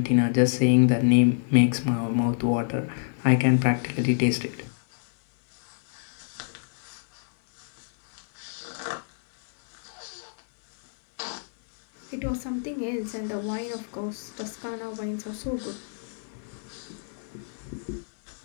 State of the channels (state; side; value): silent; right; 60 dB below the other